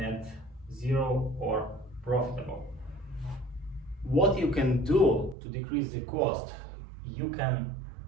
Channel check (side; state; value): left; drops out; at 5.4 s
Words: zero or profitable. What you can do to decrease the cost, you can